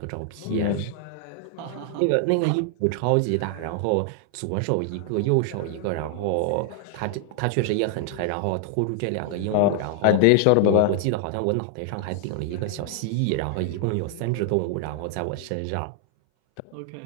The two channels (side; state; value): both; different; correlation 0.00